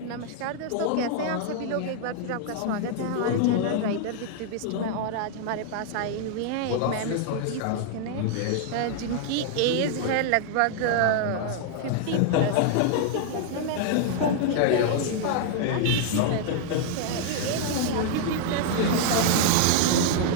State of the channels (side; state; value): both; different; correlation 0.00